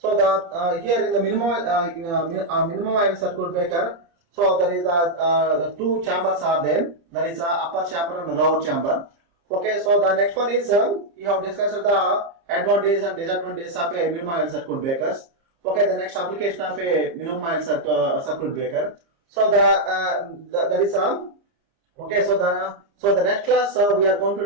the here in the minimum oil circuit breaker, so there is the two chambers are there. That is upper chamber and lower chamber. Okay, so the next one is we have discussed the advantages and disadvantages of a minimum oil circuit breakers. Okay, the next application of a minimum oil circuit breaker. So that is okay. So the next class we are going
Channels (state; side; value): late; left; 29 ms